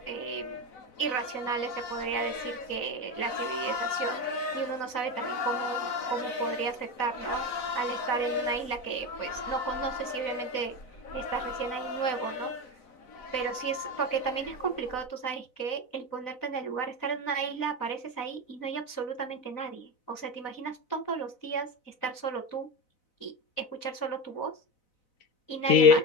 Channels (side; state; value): right; late; 4.0 ms